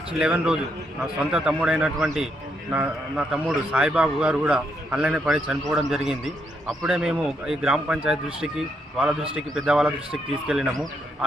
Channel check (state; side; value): normal; both; correlation 0.77